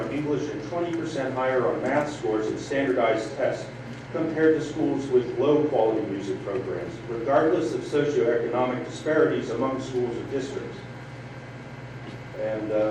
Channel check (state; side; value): identical; both; correlation 1.00